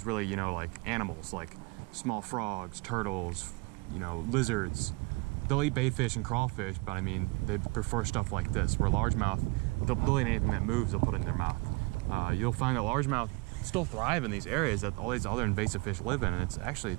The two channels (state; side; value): quieter; left; 26.8 dB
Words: really, you know, like animals, like small frogs, turtles, you know, lizards. They'll eat baitfish and crawfish, but I mean, they prefer stuff like this, where largemouth, they'll eat anything that moves, they'll put it in their mouth. You'll find that largemouth still thrive in these areas that all these other invasive fish live in, and it's actually,